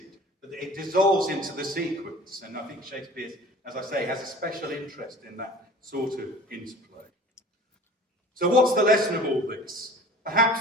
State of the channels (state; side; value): normal; both; correlation 0.43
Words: but it dissolves into the sequence. And I think Shakespeare, as I say, has a special interest in that sort of interplay. So what's the lesson of all this?